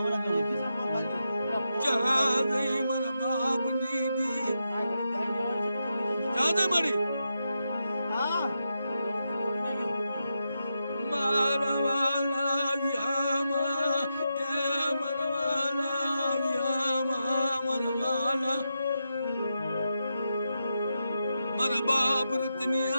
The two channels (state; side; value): inverted; both; correlation -0.86